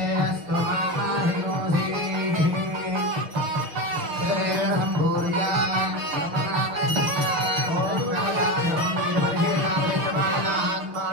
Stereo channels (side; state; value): left; late; 6.6 ms